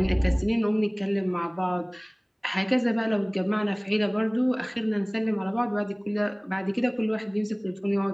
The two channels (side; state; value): both; identical; correlation 1.00